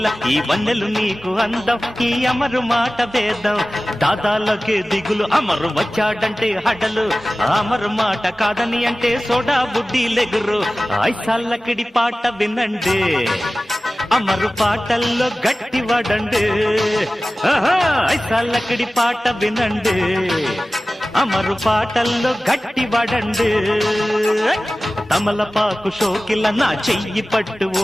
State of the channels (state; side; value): normal; both; correlation 0.97